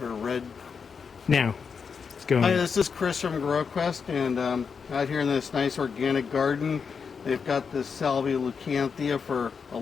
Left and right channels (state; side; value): quieter; right; 5.9 dB